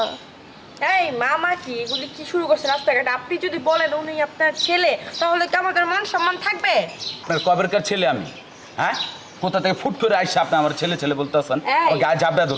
এই মামা কি এগুলি কি শুরু করছে রাস্তাঘাটে? আপনি যদি বলেন উনি আপনার ছেলে তাহলে কি আমাদের মান সম্মান থাকবে? আপনার কবেরকার ছেলে আমি? হ্যাঁ কোথা থেকে ফুট করে আইসা আপনি আমার ছেলে ছেলে বলতে আছেন? এই। গায়ে জাবড়া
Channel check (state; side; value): identical; both; correlation 1.00